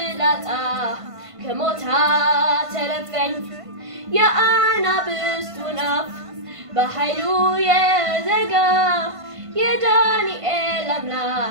ከሞት አተረፈኝ የአናብስቱን አፍ በኃይሉ የዘጋ የዳንኤል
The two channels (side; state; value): left; late; 1.5 ms